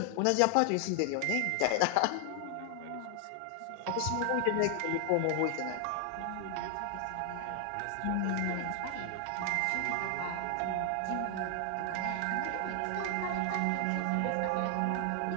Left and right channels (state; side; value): different; both; correlation 0.00